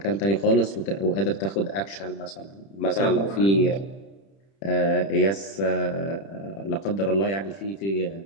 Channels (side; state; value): right; late; 30 ms